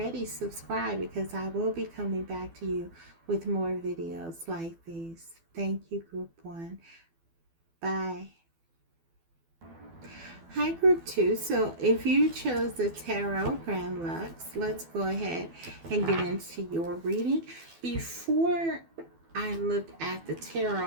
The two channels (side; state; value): left; late; 12 ms